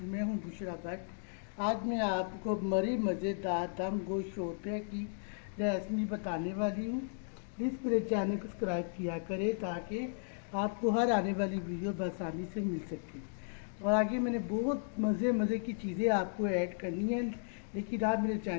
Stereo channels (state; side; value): silent; right; digital silence